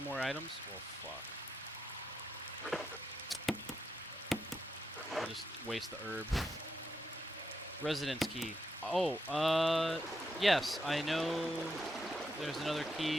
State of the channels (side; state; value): both; normal; correlation 0.83